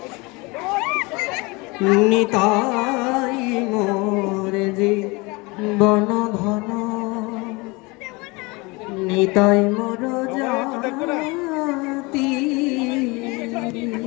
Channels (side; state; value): right; quieter; 25.8 dB